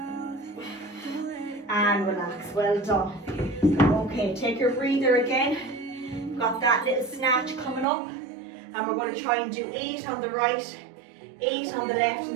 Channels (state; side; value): drops out; left; at 7.9 s